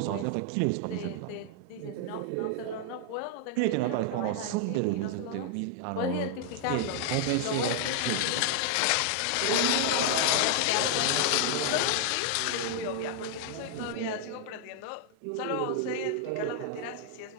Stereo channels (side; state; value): both; different; correlation 0.00